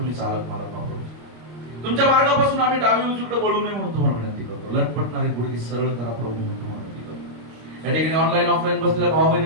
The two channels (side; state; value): left; late; 26 ms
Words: चालक मालक प्रभूजी. तुमच्या मार्गापासून आम्ही डावी उजवीकडे वळू नये म्हणून तुम्हाला विनंती करतो. लटपटणारी गुडघे सरळ करा प्रभू म्हणून तुम्हाला विनंती करतो. या ठिकाणी ऑनलाईन ऑफलाईन बसलेल्या भाऊ